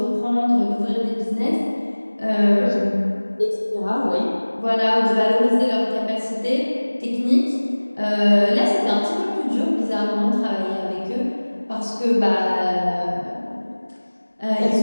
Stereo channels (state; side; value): inverted; both; correlation -1.00